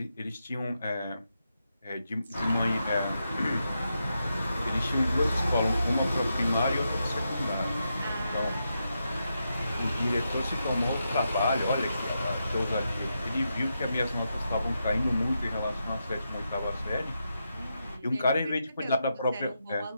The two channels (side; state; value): both; inverted; correlation -0.85